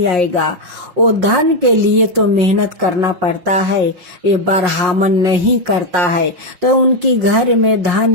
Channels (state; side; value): late; left; 5.5 ms